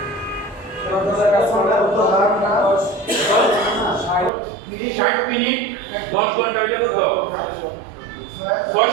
60 মিনিট 10 ঘন্টা, এটা কত?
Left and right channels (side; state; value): left; drops out; at 4.3 s